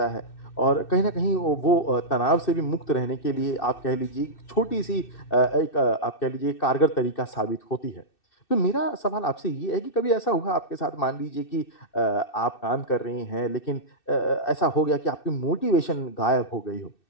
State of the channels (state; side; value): late; right; 2.6 ms